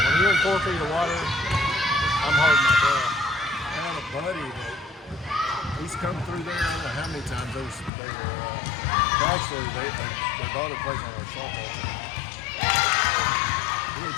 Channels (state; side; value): drops out; right; at 7.9 s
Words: you're in 4 feet of water, I'm holding my breath. I had a buddy that he's come through there. I don't know how many times they bought a place on a salt boat. He had